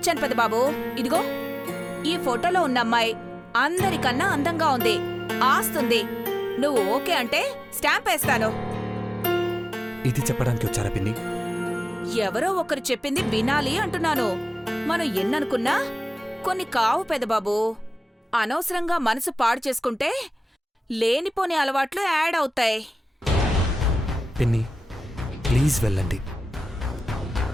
పెదబాబు. ఇదిగో, ఈ ఫోటోలో ఉన్న అమ్మాయి అందరికన్నా అందంగా ఉంది, ఆస్తుంది. నువ్వు ఓకే అంటే స్టాంప్ వేస్తాను. ఇది చెప్పడానికి వచ్చారా పిన్ని? ఎవరో ఒకరు చెప్పింది వినాలి అంటున్నాను. మనం ఎన్ననుకున్నా కొన్ని కావు పెదబాబు. అనవసరంగా మనసు పాడు చేసుకుంటే లేనిపోని అలవాట్లు యాడ్ అవుతాయి. పిన్ని ప్లీజ్ వెళ్ళండి.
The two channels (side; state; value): both; normal; correlation 0.96